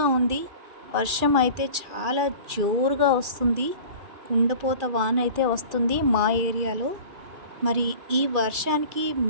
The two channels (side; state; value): left; late; 2.3 ms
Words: ఉంది. వర్షం అయితే చాలా జోరుగా వస్తుంది. కుండపోత వాన అయితే వస్తుంది మా ఏరియాలో. మరి ఈ వర్షానికి